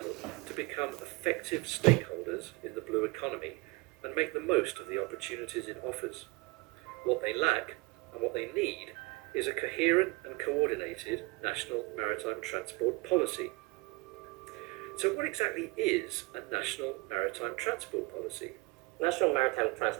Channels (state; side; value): quieter; left; 24.1 dB